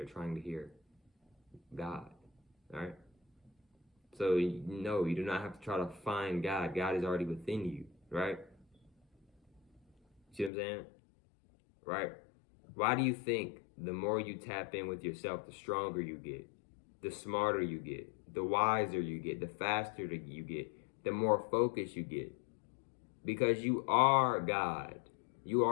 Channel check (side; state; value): right; drops out; at 10.5 s